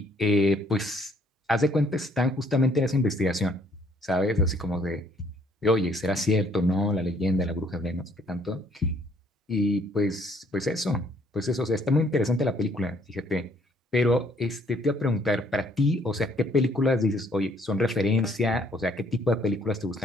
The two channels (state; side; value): normal; both; correlation 0.65